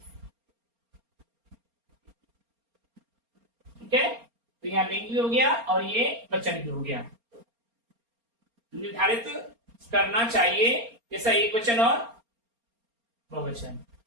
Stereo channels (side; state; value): left; late; 4.3 ms